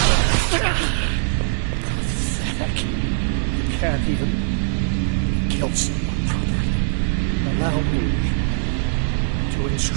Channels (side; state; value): left; silent; 57 dB below the other